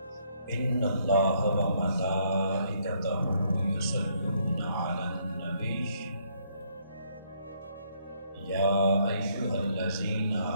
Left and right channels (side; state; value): both; inverted; correlation -0.70